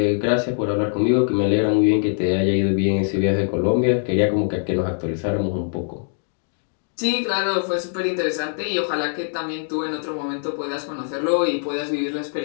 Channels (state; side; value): silent; right; digital silence